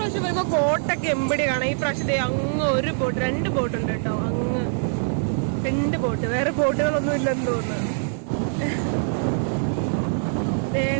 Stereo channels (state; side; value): silent; left; 59 dB below the other